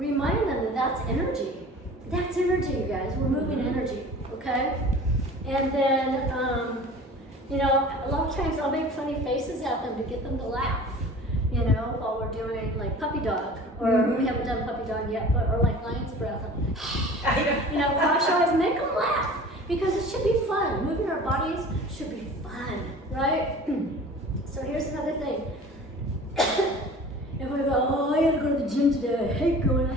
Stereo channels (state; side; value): normal; both; correlation 0.42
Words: them that that's energy. That's energy, you guys. We're moving energy, okay? And then, a lot of times I'll make funny faces at them to get them to laugh, while we're doing like puppy dog, or we haven't done puppy dog yet, or like lion's breath. Cross your eyes, make them laugh, because it should be fun. Moving our bodies should be fun, right? So here's another thing. If we go, oh, I gotta go to the gym today, I hate